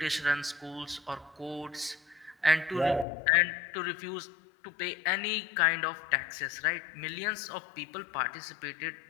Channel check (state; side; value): drops out; right; at 3.1 s